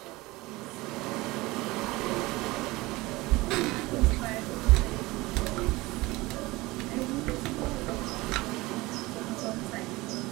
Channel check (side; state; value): left; quieter; 21.1 dB